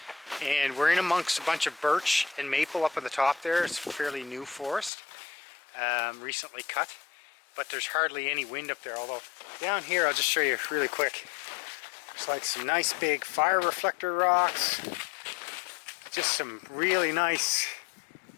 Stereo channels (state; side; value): drops out; right; at 4.9 s